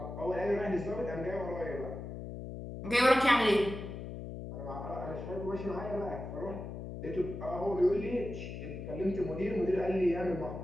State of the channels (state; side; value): noise; left; hum, 8 dB below the sound